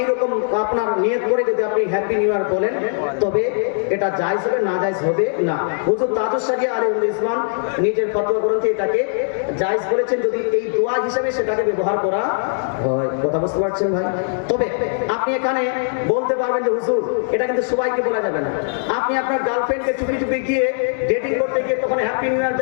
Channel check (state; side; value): silent; right; digital silence